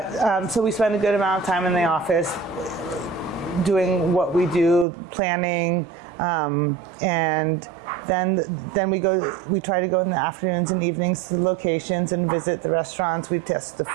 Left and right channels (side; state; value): left; drops out; at 4.9 s